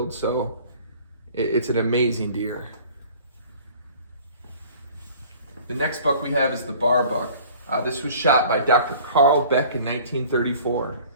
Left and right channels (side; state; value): both; inverted; correlation -0.48